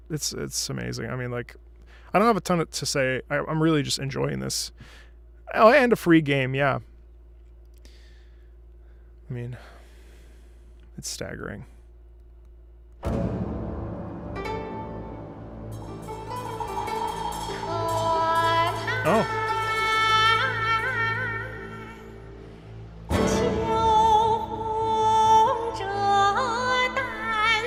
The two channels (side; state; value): both; identical; correlation 1.00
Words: amazing. I mean, like, I don't have a ton to say. I'm really just enjoying this. Oh, and a free game, yeah. I mean, it's staggering. Oh.